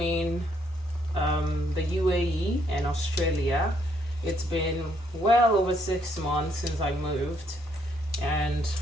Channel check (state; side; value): normal; both; correlation 0.71